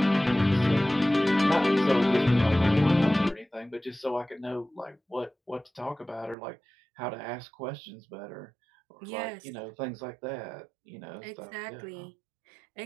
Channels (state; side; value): drops out; left; at 6.4 s